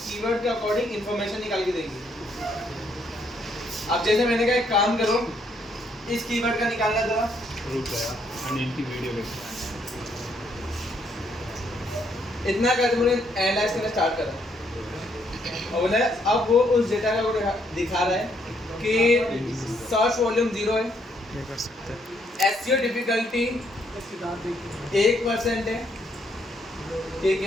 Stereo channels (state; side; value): normal; both; correlation 0.72